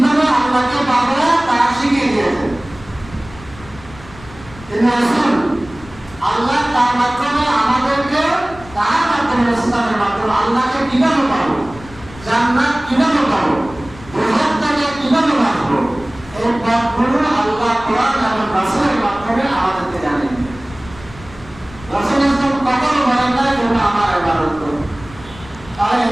আল্লাহকে পাবো তা শিখিয়ে দিয়েছেন। তিনি রসুল, আল্লাহ তার মাধ্যমে আমাদেরকে, তার মাধ্যমে ইসলামের মাধ্যমে আল্লাহকে কিভাবে পাবো, জান্নাত কিভাবে পাবো, বৃহত্তকে কিভাবে বাঁচবো, এই পথগুলো আল্লাহ কোরআন এবং রাসূলের মাধ্যমে আমাদেরকে জানেন। রাসূল ইসলাম কখনো বলেন না তোমরা আমার ইবাদত করো, তাহলে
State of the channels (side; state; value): left; noise; rumble, 19 dB below the sound